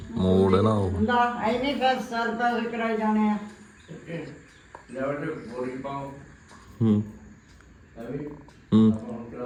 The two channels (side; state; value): both; identical; correlation 1.00